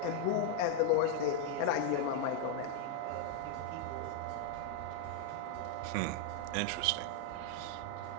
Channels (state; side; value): different; both; correlation 0.00